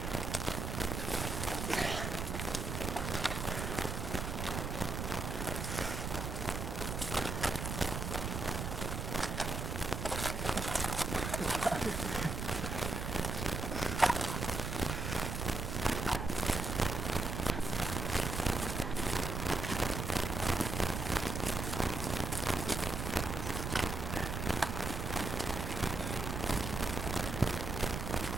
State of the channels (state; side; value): noise; right; rumble, 3 dB below the sound